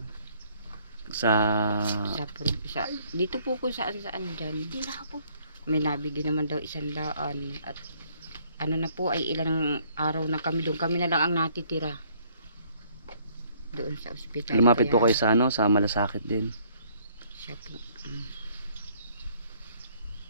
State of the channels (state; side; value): inverted; both; correlation -0.62